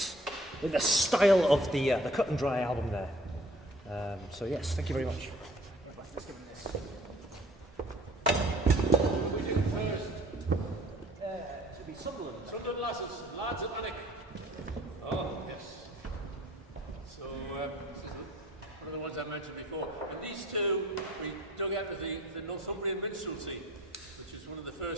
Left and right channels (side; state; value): both; normal; correlation 0.53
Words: in the style of the Cut and Dry album there. So yes, thank you very much. Let's give them this. We do first. To be Sunderland. Sunderland lads at Manic. Oh, yes. So, this is one of the ones I mentioned before. And these two, we dug out of the Northumbrian Minstrelsy, which is one of the